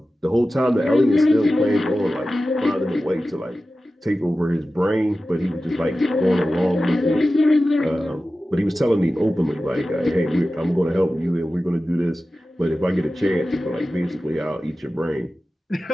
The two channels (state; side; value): normal; both; correlation 0.95